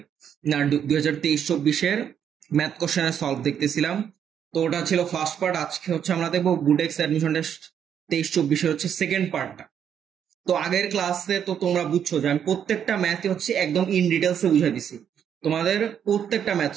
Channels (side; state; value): left; quieter; 8.6 dB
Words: না 2023-24-এর ম্যাথ কোশ্চেনের সলভ দেখতেছিলাম। তো ওটা ছিল ফার্স্ট পার্ট। আজকে আমরা দেখবো বুটেক্স অ্যাডমিশন টেস্ট 23-24-এর সেকেন্ড পার্টটা। তো আগের ক্লাসে তো তোমরা বুঝছো যে আমি প্রত্যেকটা ম্যাথই একদম ইন ডিটেলসে বুঝাই দিছি। তোমাদের প্রত্যেকটা ম্যাথ